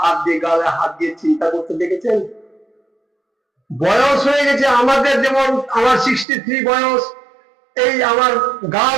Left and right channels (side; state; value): left; drops out; at 6.2 s